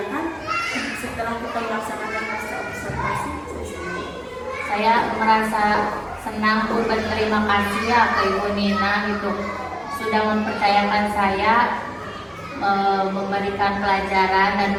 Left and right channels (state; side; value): identical; both; correlation 1.00